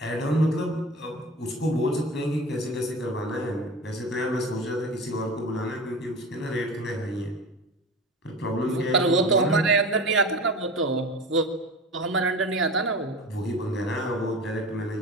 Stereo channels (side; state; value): both; normal; correlation 0.32